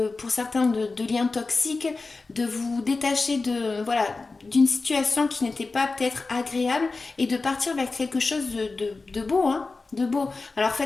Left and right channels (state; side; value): quieter; right; 3.8 dB